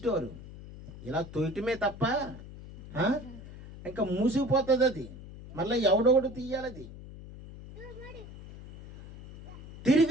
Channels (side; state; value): left; noise; hum, 15 dB below the sound